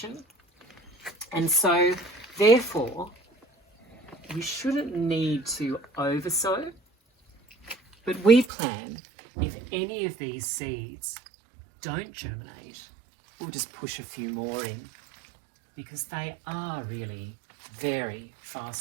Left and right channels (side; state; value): left; drops out; at 8.5 s